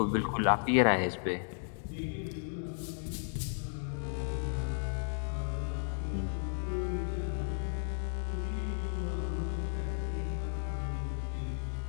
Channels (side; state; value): right; silent; digital silence